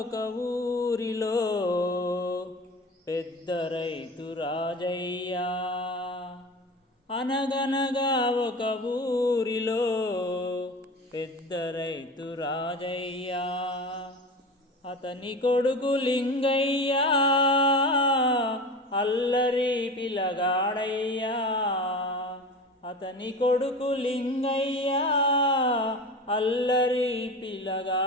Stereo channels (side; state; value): both; normal; correlation 0.32